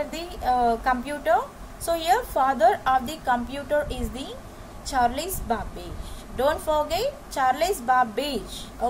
the computer. So here father of the computer is the Charles Babbage. Don't forget Charles Babbage.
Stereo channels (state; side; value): identical; both; correlation 1.00